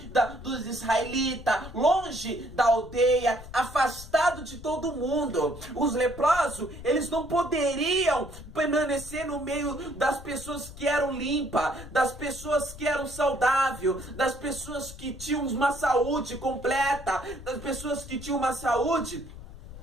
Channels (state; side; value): noise; left; rumble, 14 dB below the sound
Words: dos israelitas, longe da aldeia, afastado de todo mundo. Os leprosos, eles não poderiam permanecer no meio das pessoas que eram limpas, das pessoas que eram saudáveis, das pessoas que tinham uma saúde completa, das pessoas que tinham uma saúde,